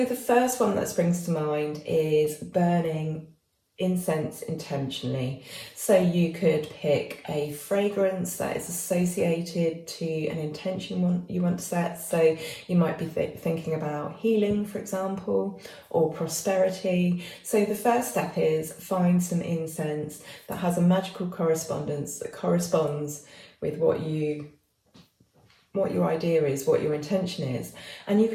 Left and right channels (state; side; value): identical; both; correlation 1.00